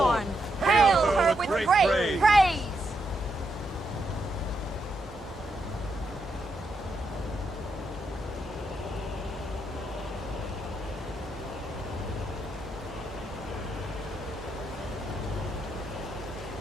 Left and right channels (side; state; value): both; normal; correlation 0.81